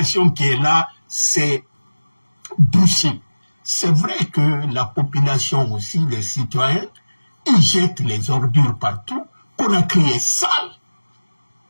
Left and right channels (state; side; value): inverted; both; correlation -1.00